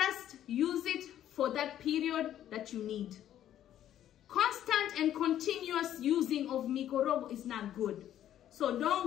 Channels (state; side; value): quieter; right; 11.4 dB